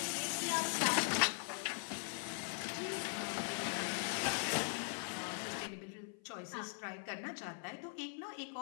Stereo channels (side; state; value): right; silent; 51 dB below the other